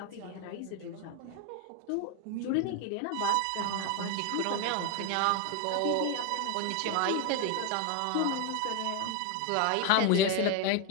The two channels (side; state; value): both; different; correlation 0.01